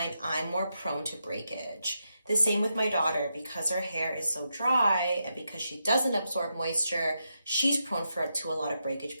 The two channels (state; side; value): inverted; both; correlation -0.85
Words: I'm more prone to breakage. The same with my daughter, because her hair is so dry and because she doesn't absorb moisture, she's prone to a lot of breakage